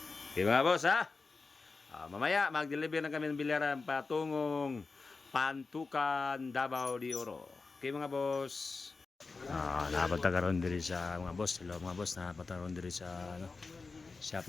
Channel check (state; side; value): quieter; right; 4.1 dB